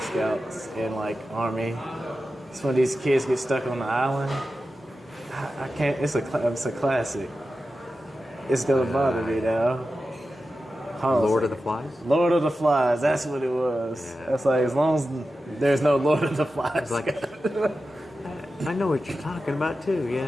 and like Army. It's when these kids get stuck on the island. I can't. It's a classic. It's gonna bother me now. Lord of the Flies? Lord of the Flies. That's what it was. Yeah. That's like as long as there's no Lord of the Flies. It's like, I know what you're talking about too.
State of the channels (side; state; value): both; normal; correlation 0.92